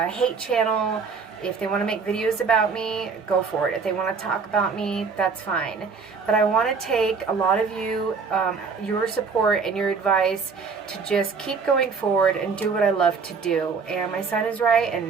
channel. If they want to make videos about me, go for it. If they want to talk about me, that's fine. But I want to take a lot of you, your support and your advice to just keep going forward and do what I love to do. And my son is right,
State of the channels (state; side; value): quieter; left; 5.2 dB